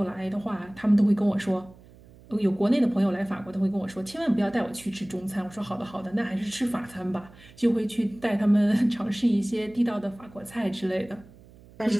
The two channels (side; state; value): right; noise; hum, 23 dB below the sound